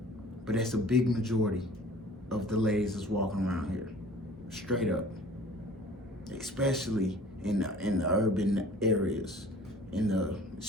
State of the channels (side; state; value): both; normal; correlation 0.48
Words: but that's a big majority of the ladies that's walking around here, straight up. Especially in the urban areas,